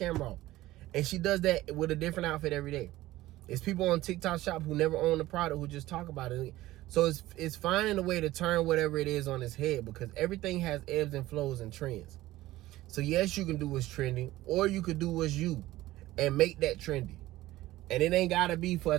off. And she does that with a different outfit every day. It's people on TikTok Shop who never own the product who just talk about it. So it's finding a way to turn whatever it is on its head, because everything has ebbs and flows and trends. So yes, you can do what's trending, or you could do what's you and make that trendy. And it ain't gotta be for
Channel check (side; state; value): left; quieter; 16.6 dB